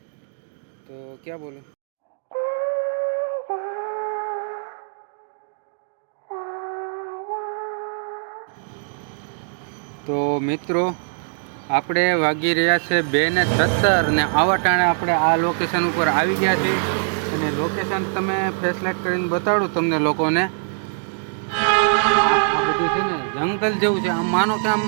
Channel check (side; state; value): left; silent; digital silence